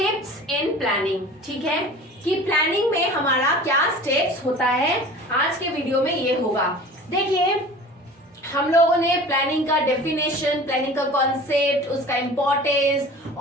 इन प्लानिंग। ठीक है, कि प्लानिंग में हमारा क्या स्टेप्स होता है, आज के वीडियो में ये होगा। देखिए, हम लोगों ने प्लानिंग का डेफिनेशन, प्लानिंग का कॉन्सेप्ट, उसका इंपॉर्टेंस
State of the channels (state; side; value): normal; both; correlation 0.41